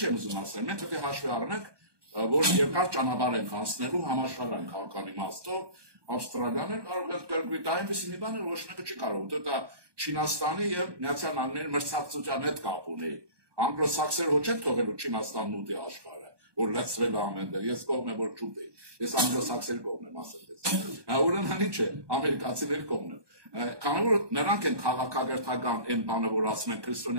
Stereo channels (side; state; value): left; late; 1.2 ms